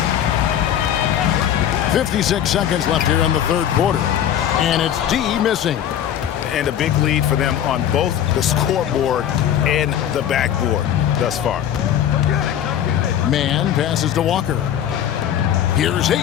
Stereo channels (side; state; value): right; quieter; 10.2 dB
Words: 56 seconds left here in the third quarter. And it's D missing. And a big lead for them on both the scoreboard and the backboard thus far. Mann passes to Walker. Here's